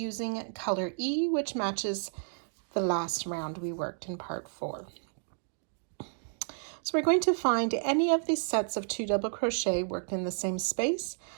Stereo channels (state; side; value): silent; left; digital silence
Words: color E, which matches the last round we worked in part 4. So we're going to find any of these sets of 2 double crochet worked in the same space,